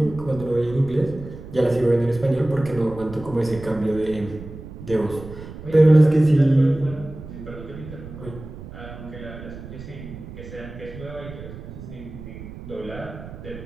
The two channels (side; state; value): right; noise; rumble, 13 dB below the sound